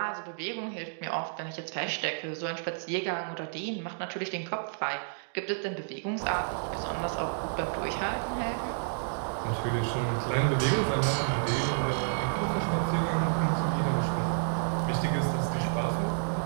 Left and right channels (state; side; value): silent; left; digital silence